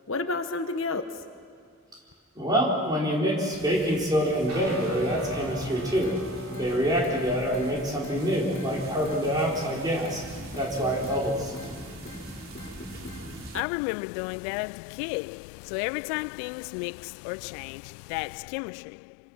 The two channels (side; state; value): right; drops out; at 13.6 s